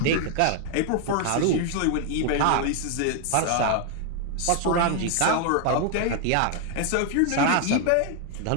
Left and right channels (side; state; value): both; different; correlation 0.00